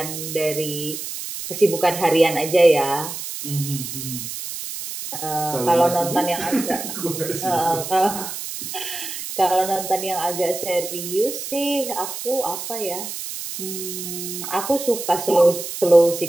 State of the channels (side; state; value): right; noise; hiss, 7 dB below the sound